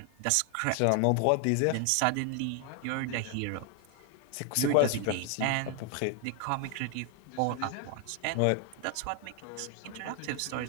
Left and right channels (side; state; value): both; different; correlation 0.01